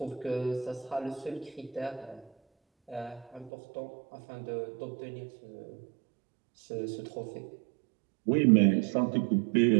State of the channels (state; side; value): drops out; left; at 3.5 s